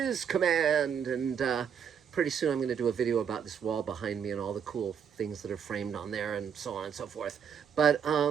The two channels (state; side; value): quieter; left; 7.6 dB